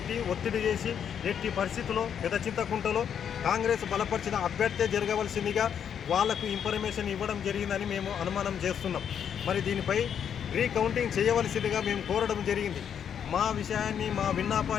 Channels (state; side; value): quieter; right; 8.3 dB